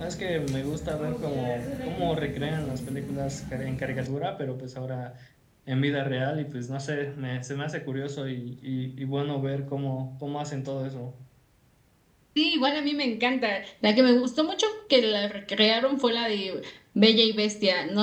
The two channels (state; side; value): identical; both; correlation 1.00